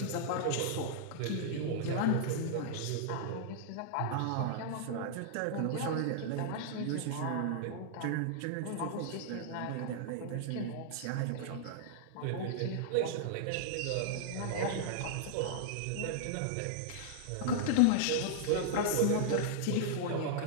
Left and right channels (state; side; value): different; both; correlation -0.01